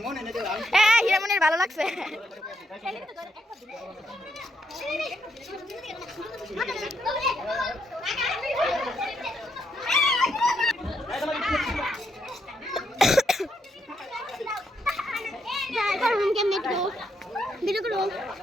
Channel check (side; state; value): both; normal; correlation 0.78